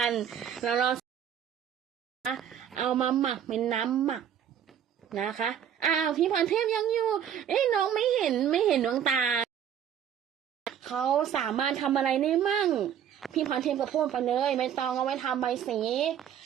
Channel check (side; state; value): left; quieter; 9.2 dB